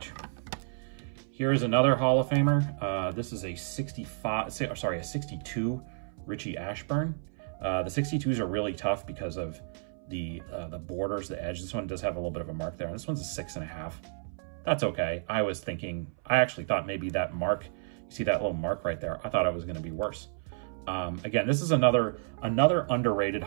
Here is another Hall of Famer. This is a 62 Richie Ashburn. The 62s are really tough because of the borders, the edge. This one does have a little bit of a mark there. And this one's a 6.5. That's okay. I actually thought maybe that mark, you see that little mark right there? I thought it was going to be worse. Again, this is another underrated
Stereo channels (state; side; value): silent; left; 57 dB below the other